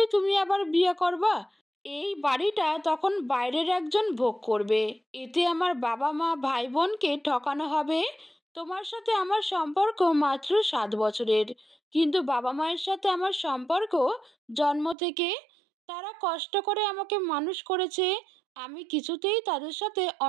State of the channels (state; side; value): drops out; left; at 15.0 s